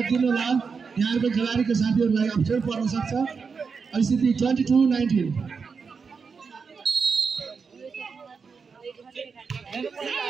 होला, यहाँको खेलाडीको साथीहरूलाई अप्ठ्यारो पर्न सक्छ। स्थिति 22-19।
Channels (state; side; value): quieter; left; 5.4 dB